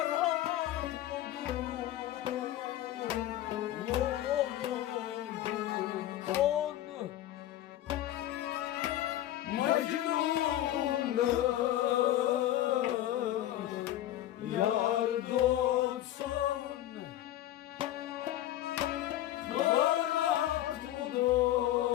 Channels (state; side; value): quieter; right; 13.6 dB